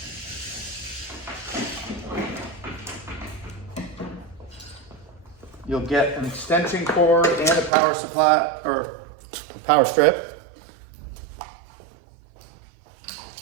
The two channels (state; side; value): drops out; left; at 7.7 s